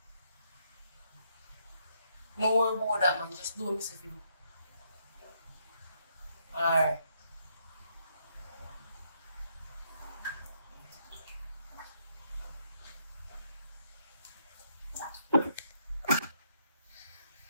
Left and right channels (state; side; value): inverted; both; correlation -0.75